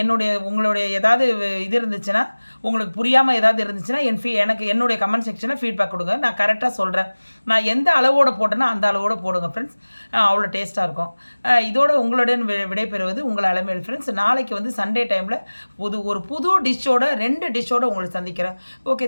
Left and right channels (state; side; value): inverted; both; correlation -1.00